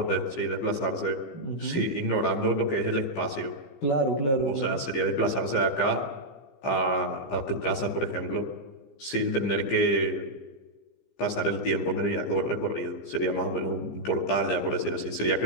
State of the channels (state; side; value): late; right; 15 ms